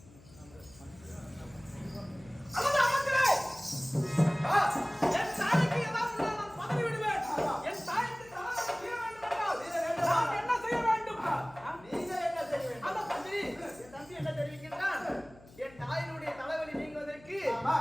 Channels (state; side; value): noise; left; hum, 23 dB below the sound